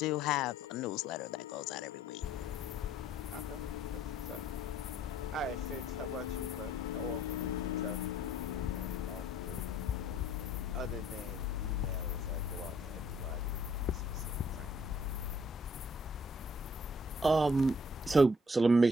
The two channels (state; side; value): normal; both; correlation 0.62